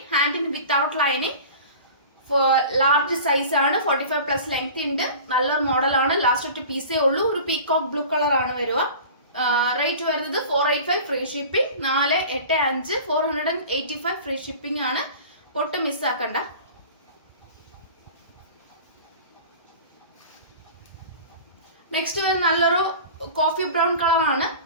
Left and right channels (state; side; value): inverted; both; correlation -0.39